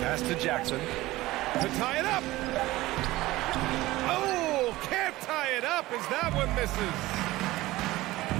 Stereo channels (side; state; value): left; quieter; 18.1 dB